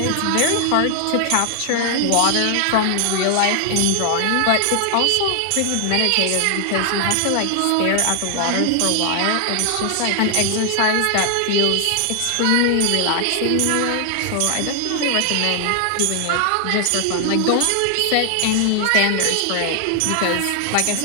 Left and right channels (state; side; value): different; both; correlation 0.00